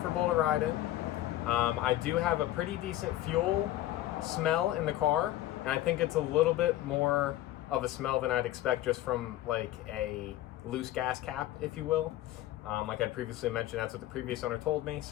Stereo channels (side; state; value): right; quieter; 14.6 dB